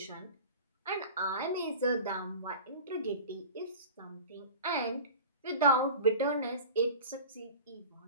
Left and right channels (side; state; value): both; inverted; correlation -0.37